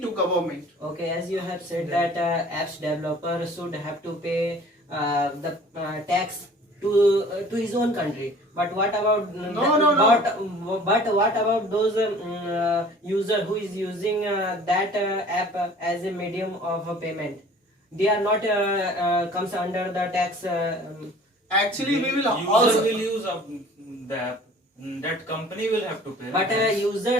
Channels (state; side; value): normal; both; correlation 0.49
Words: government. Okay, as you have said that apps developer should have to pay the tax to his own country. But what about No. But what about those user who is using that app as a medium of payment? They are not comes under the tax. Actually, we will User also will use the app. That company will have to pay. the But tax.